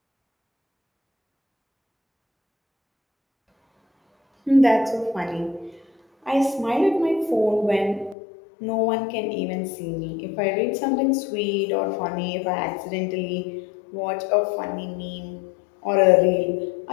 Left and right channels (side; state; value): right; drops out; at 8.2 s